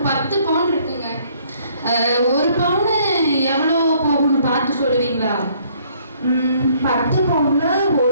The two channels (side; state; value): both; inverted; correlation -0.63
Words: 10 பவுன் இருக்குங்க. ஒரு பவுன் எவ்வளோ போகும்னு பார்த்து சொல்லுவீங்களா? 10 பவுன்ல